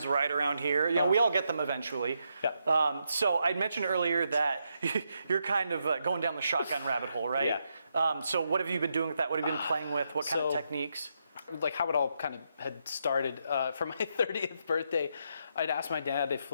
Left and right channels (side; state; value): both; inverted; correlation -0.81